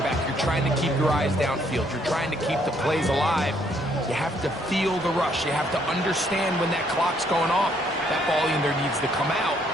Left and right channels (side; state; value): both; normal; correlation 0.68